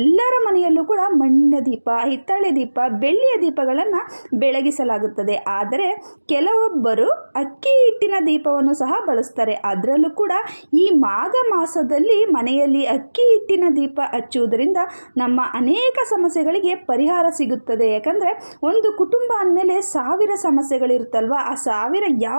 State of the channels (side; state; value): both; inverted; correlation -1.00